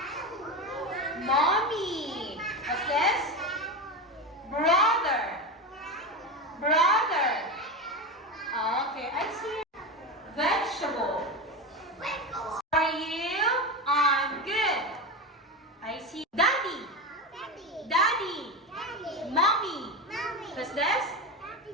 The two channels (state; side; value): normal; both; correlation 0.19